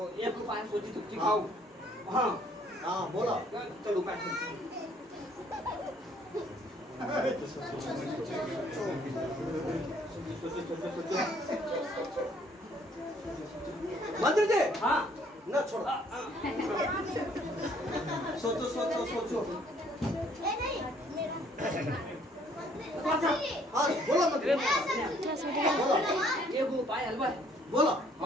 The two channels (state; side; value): normal; both; correlation 0.62